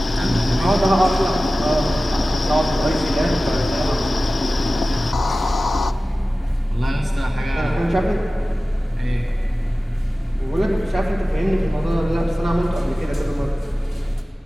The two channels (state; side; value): normal; both; correlation 0.96